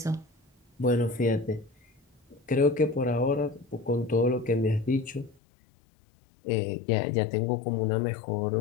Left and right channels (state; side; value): drops out; right; at 5.4 s